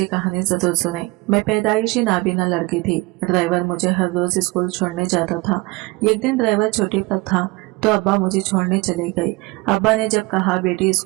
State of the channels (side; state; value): left; quieter; 23.8 dB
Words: कहानी जरूर सुने। मैं पैदाइशी नाबीना लड़की थी। ड्राइवर मुझे हर रोज स्कूल छोड़ने जाता था। एक दिन ड्राइवर छुट्टी पर था तो अब्बा मुझे छोड़ने चले गए। अब्बा ने जब कहा बेटी